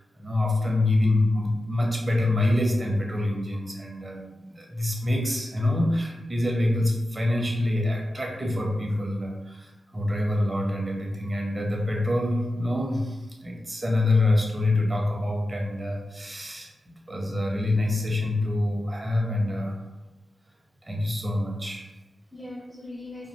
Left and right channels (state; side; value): normal; both; correlation 0.92